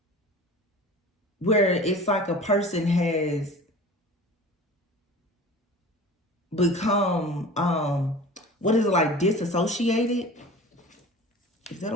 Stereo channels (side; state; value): both; normal; correlation 0.39